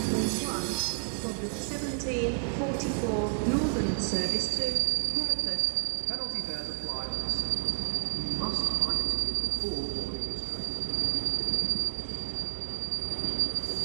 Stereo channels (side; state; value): left; silent; 57 dB below the other